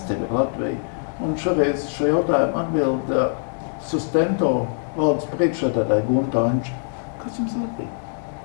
tev ir Latvija. Un šoreiz šo jautājumu atbild Sustento valdes priekšsēdētāja Gunta Anča. Kas jums ir Latvija?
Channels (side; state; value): right; silent; digital silence